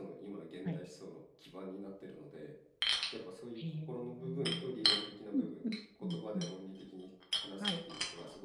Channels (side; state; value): both; identical; correlation 1.00